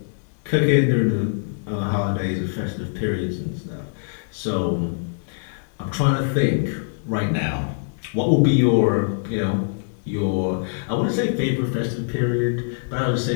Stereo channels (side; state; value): right; silent; digital silence